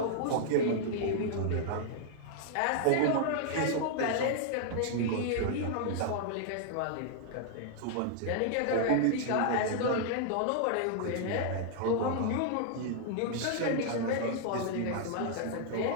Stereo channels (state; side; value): different; both; correlation -0.01